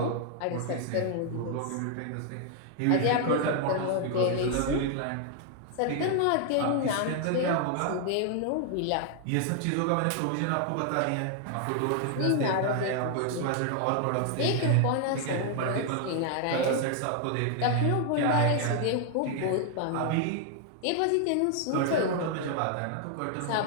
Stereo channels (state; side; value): different; both; correlation 0.00